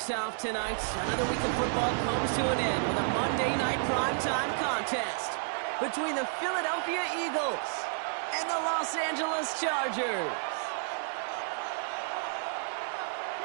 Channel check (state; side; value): silent; left; digital silence